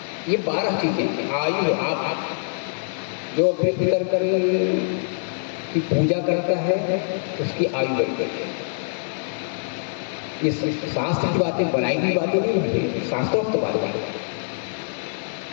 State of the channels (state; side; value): silent; right; digital silence